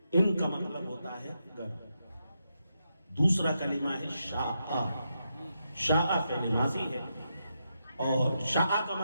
ان کا مطلب ہوتا ہے گر۔ دوسرا کلمہ ہے شاء، شاء فعل ماضی ہے اور شاء کا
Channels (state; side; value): inverted; both; correlation -0.84